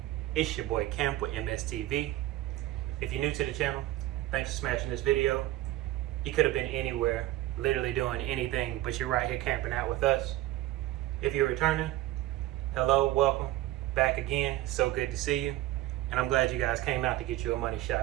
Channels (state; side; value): quieter; left; 15.9 dB